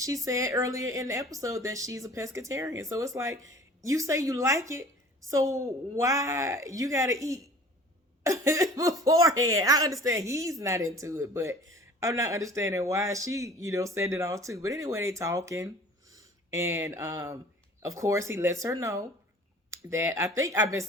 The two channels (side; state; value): both; normal; correlation 0.46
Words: said earlier in the episode that she's a pescatarian. So it's like, you say you like it, so why you gotta eat beforehand? I understand he's not into it, but I'm not understanding why she, said it all too. But anyway, they talking. And of course, he lets her know that, I think I've been